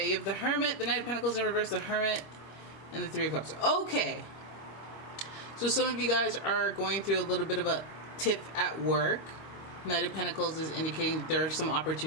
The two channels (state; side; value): late; right; 26 ms